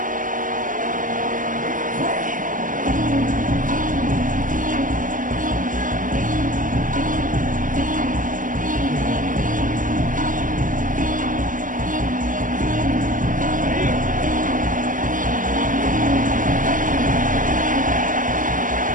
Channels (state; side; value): late; left; 0.38 ms